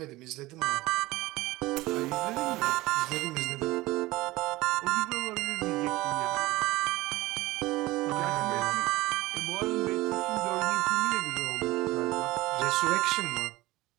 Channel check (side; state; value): left; quieter; 19.3 dB